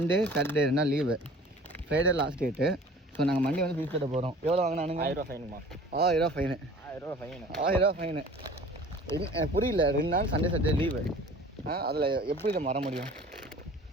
சாட்டர்டே 2 நாள் leave. Friday last date. So நாங்கள் மண்டே வந்து ஃபீஸ் கட்ட போகிறோம். எவ்வளோ வாங்கினானுங்க? 1000 ரூபா ஃபைனுமா? 1000 ரூபா ஃபைனு. 1000 ரூபா ஃபைனு. புரியல. 2 நாள் சண்டே சாட்டர்டே லீவு. அதில் எப்படி இதை வர முடியும்?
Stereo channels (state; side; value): normal; both; correlation 0.46